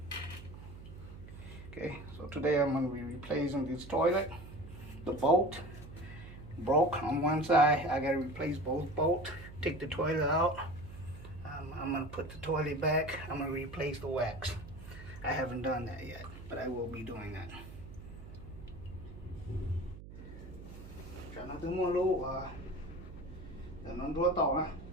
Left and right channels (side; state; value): right; noise; hum, 14 dB below the sound